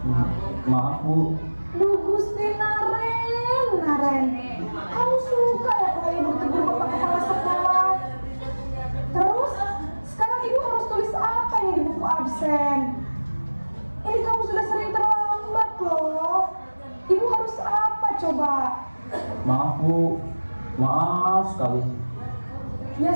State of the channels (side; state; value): both; inverted; correlation -1.00